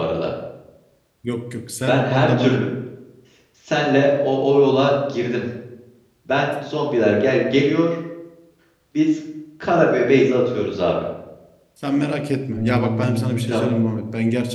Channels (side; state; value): both; identical; correlation 1.00